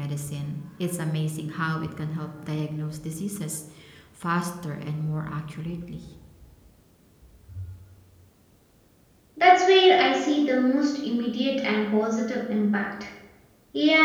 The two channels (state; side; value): identical; both; correlation 1.00